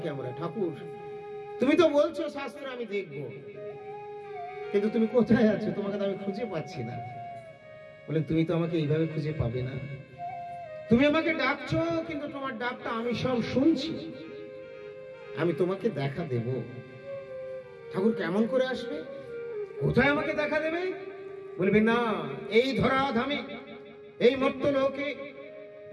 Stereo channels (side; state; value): both; identical; correlation 1.00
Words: আমরা, ঠাকুর তুমি তো বলছো শাস্ত্রে আমি দেখব, কিন্তু তুমি কোথায় আছো? তোমাকে তো আমি খুঁজে পাচ্ছি না। বলে তুমি তো আমাকে এইভাবে খুঁজে পাবে না। তুমি আমাকে ডাকছো, কিন্তু তোমার ডাকটা আমি সব শুনছি। আমি তোমাকে দেখা দেব। ঠাকুর কেমন করে আসবে? কোথায় আমাকে দেখা দেবে? বলবে না, এই ধরাধামে, এই মর্ত্যলোকে,